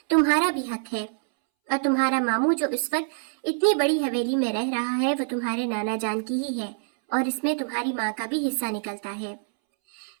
تمہارا بھی حق ہے، اور تمہارا ماموں جو اس وقت اتنی بڑی حویلی میں رہ رہا ہے وہ تمہارے نانا جان کی ہی ہے، اور اس میں تمہاری ماں کا بھی حصہ نکلتا ہے۔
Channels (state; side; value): silent; left; 61 dB below the other